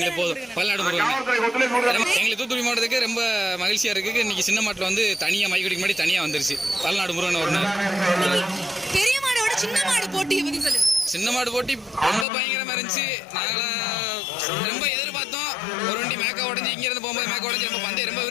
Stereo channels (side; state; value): right; drops out; at 12.2 s